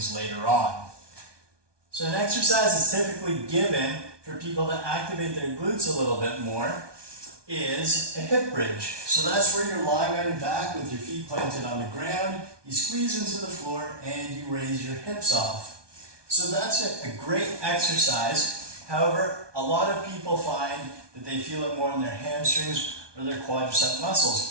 later on. So an exercise is typically given for people to activate their glutes a little bit more is a hip bridge. So that's where you're lying on your back with your feet planted on the ground, you squeeze into the floor and you raise your hips off. So that's a great exercise. However, a lot of people find that they feel it more in their hamstrings or their quadricep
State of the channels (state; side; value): late; left; 1.2 ms